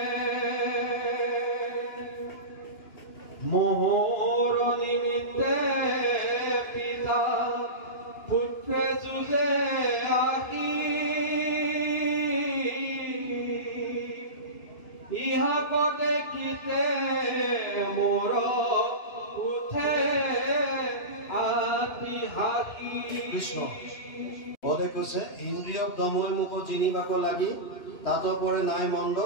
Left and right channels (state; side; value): late; right; 2.9 ms